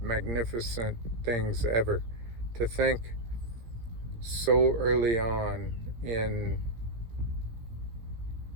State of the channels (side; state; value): left; late; 17 ms